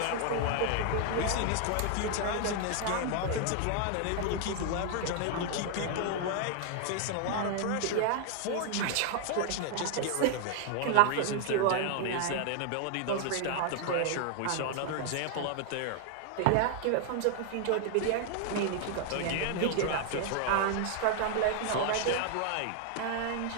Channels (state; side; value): different; both; correlation 0.00